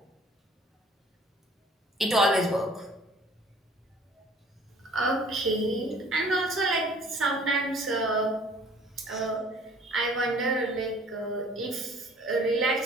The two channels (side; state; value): both; normal; correlation 0.52